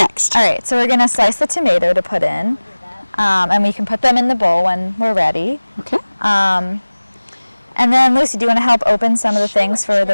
All right, so we're going to slice the tomato to put in, and we can put them in the bowl when we're ready. Okay. And then, Lucy, do you want to help open some of the things for the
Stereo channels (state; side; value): inverted; both; correlation -1.00